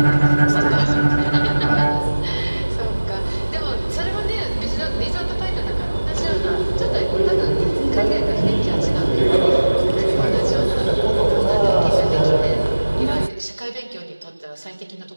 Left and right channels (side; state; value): both; inverted; correlation -1.00